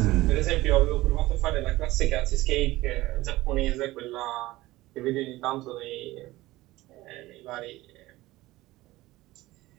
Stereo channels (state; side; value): quieter; left; 18.2 dB